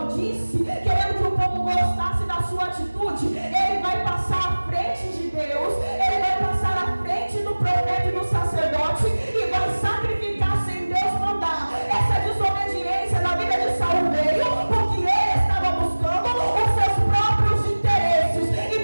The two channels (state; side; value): inverted; both; correlation -1.00